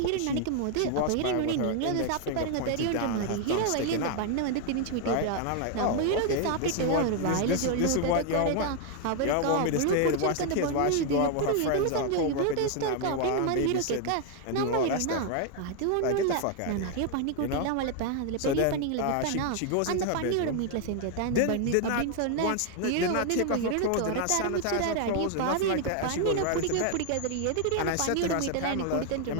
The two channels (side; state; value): both; different; correlation 0.00